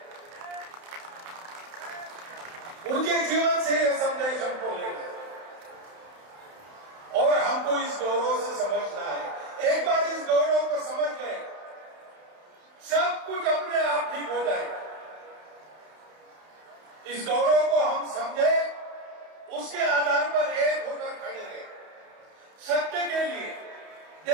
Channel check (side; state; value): left; late; 31 ms